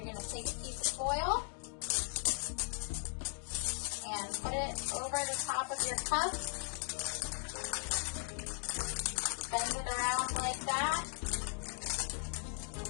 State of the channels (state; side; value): silent; right; 52 dB below the other